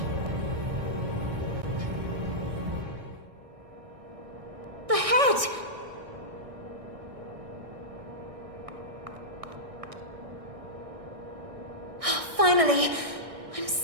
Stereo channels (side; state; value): left; late; 1.6 ms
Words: The head! Oh, finally! I'm